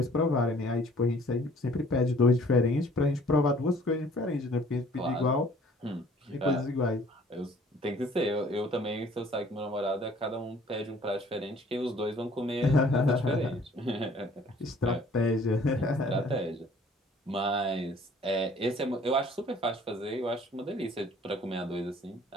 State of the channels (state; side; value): normal; both; correlation 0.55